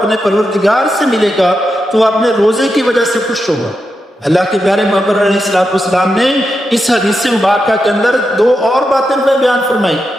پروردگار سے ملے گا تو وہ اپنے روزے کی وجہ سے خوش ہوگا۔ اللہ کے پیارے محمد علیہ السلام نے اس حدیث مبارکہ کے اندر دو اور باتیں بیان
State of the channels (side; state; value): both; normal; correlation 0.87